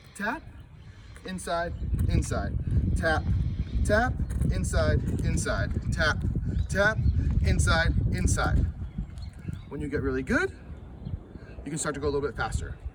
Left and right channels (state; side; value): identical; both; correlation 1.00